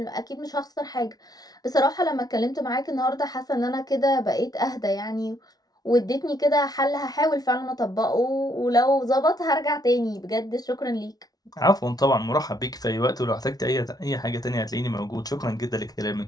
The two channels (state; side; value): late; right; 0.19 ms